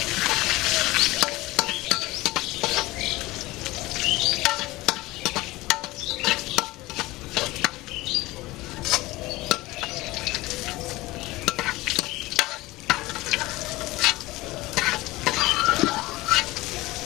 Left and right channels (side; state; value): right; quieter; 19.7 dB